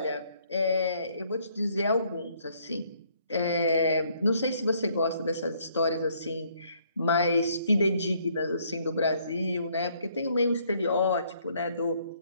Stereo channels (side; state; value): both; inverted; correlation -0.66